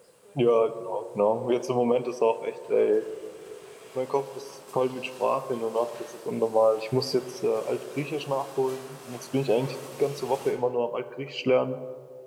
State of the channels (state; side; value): identical; both; correlation 1.00